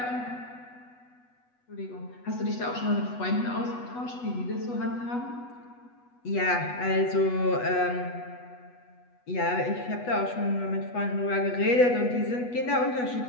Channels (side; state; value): right; late; 8.2 ms